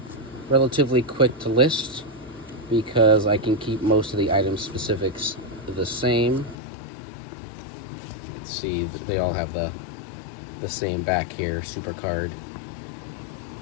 relatively quick to list because I can keep most of the item specifics the same. Let's see, they all have the same back here, super card.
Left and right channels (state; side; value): drops out; right; at 6.6 s